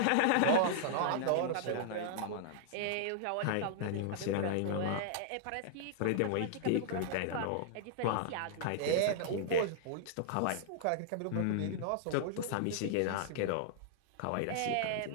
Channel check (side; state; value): both; different; correlation -0.01